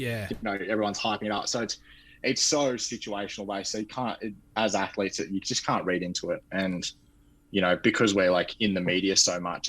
yeah, you know, everyone's hyping it up. So it's so situational based. So you can't, as athletes, you just can't read into it. And, you know, because we're like in the media so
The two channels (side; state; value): both; identical; correlation 1.00